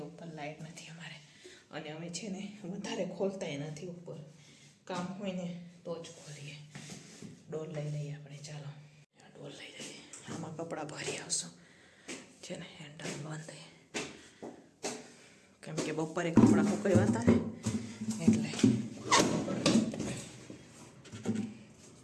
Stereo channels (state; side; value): identical; both; correlation 1.00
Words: ઉપર લાઇટ નથી અમારે. અને અમે છે ને વધારે ખોલતાય નથી ઉપર, કામ હોય ને તો જ ખોલીએ. ડોલ લઈ લઈએ આપણે. ચાલો આ ડોલ લઈ લઈએ, આમાં કપડાં ભરી આવશું. છે ને હેન્ડલ બંધ, કેમ કે બપોરે કપડાં સુકાવ્યા હતા ને એટલે.